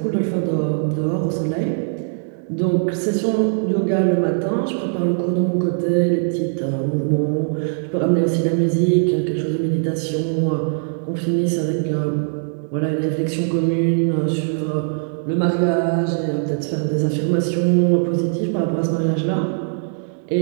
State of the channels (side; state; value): left; silent; digital silence